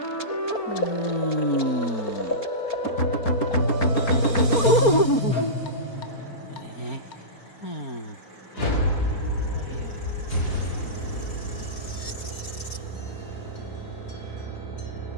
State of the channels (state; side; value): late; right; 4.3 ms